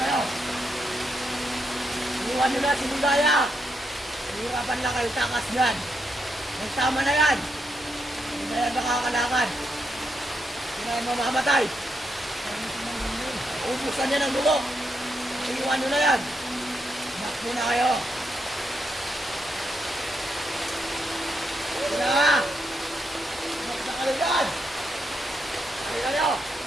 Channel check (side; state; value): both; normal; correlation 0.81